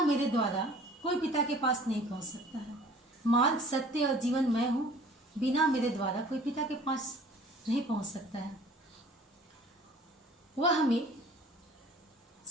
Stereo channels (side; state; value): both; normal; correlation 0.50